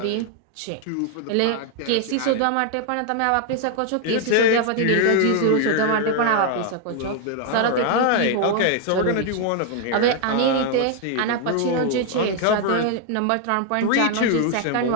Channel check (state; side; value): different; both; correlation 0.00